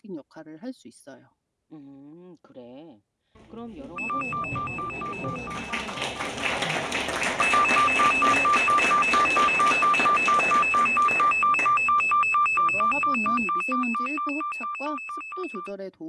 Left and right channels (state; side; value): identical; both; correlation 1.00